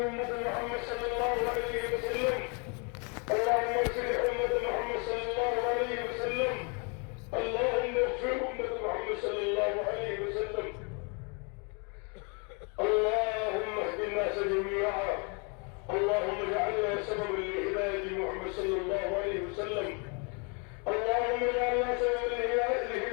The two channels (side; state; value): right; quieter; 34.7 dB